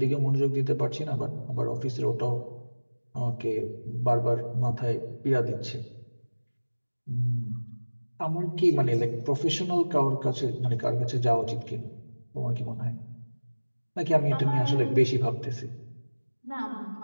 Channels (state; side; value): inverted; both; correlation -1.00